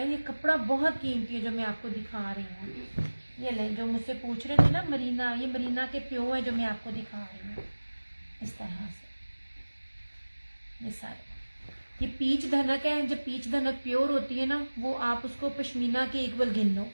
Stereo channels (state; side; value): inverted; both; correlation -1.00